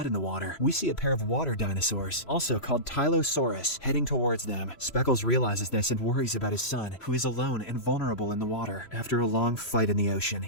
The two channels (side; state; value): right; late; 3.0 ms